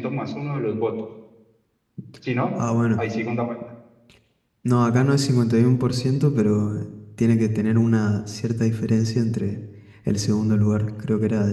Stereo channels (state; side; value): identical; both; correlation 1.00